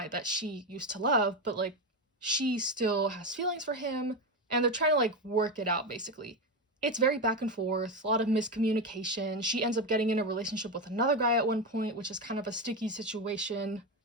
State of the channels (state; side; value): normal; both; correlation 0.14